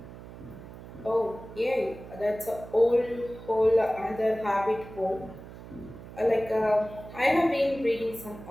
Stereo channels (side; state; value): right; noise; hum, 15 dB below the sound